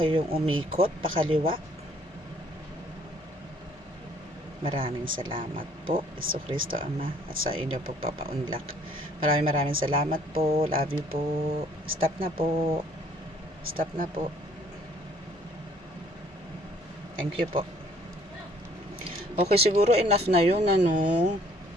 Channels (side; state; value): both; normal; correlation 0.60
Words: umikot pakaliwa? Maraming salamat po, Hesus Kristo Ama, at sa inyo po papaunlak. Maraming salamat po. Love you po. Stop na po. Stop na po. Thank you po. Okay, siguro enough na yun, ano.